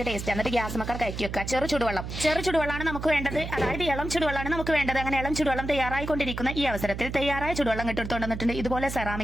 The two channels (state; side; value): noise; right; hum, 7 dB below the sound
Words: ടേസ്റ്റ് എന്നിട്ട് ഗ്യാസ് മക്കർ കയറ്റി വെക്കുക ചെറു ചുടുവെള്ളമാണ് നമുക്ക് വേണ്ടത് അതായത് ഇളം ചുടുവെള്ളമാണ് നമുക്ക് വേണ്ടത് അങ്ങനെ ഇളം ചുടുവെള്ളം തയ്യാറായിക്കൊണ്ടിരിക്കുന്ന ഈ അവസരത്തിൽ തയ്യാറായ ചുടുവെള്ളം ഇട്ടെടുത്തോണ്ട് വന്നിട്ടുണ്ട് ഇതുപോലെ